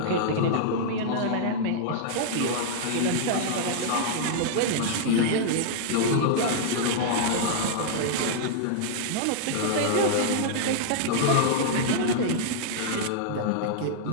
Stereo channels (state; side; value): different; both; correlation -0.01